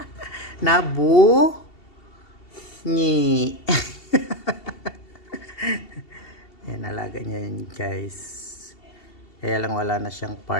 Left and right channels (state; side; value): late; right; 2.7 ms